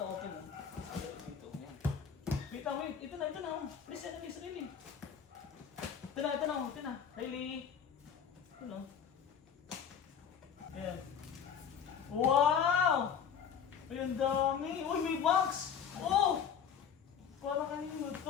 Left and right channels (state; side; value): quieter; right; 7.5 dB